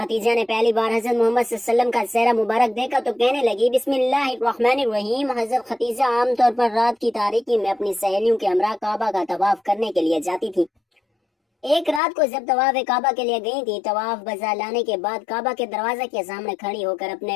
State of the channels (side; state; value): right; drops out; at 12.0 s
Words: نے پہلی بار حضرت محمد صلی اللہ علیہ وسلم کا چہرہ مبارک دیکھا تو کہنے لگی بسم اللہ الرحمن الرحیم۔ حضرت خدیجہ عام طور پر رات کی تاریکی میں اپنی سہیلیوں کے ہمراہ کعبہ کا طواف کرنے کے لیے جاتی تھی۔ ایک رات کو جب طواف کعبہ کے لیے گئی تھی، طواف بجا لانے کے بعد کعبہ کے دروازے کے سامنے کھڑی ہو کر